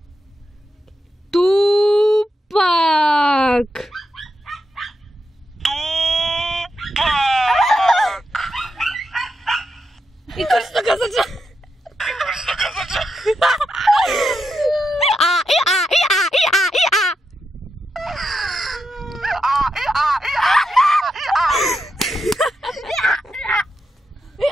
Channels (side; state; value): both; normal; correlation 0.85